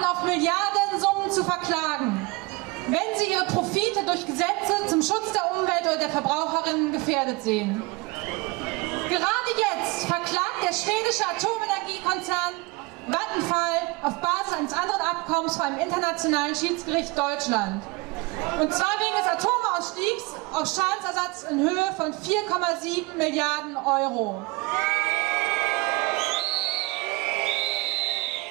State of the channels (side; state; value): left; quieter; 24.5 dB